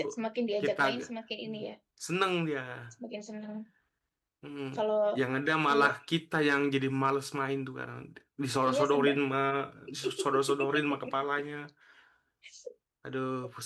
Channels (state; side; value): identical; both; correlation 1.00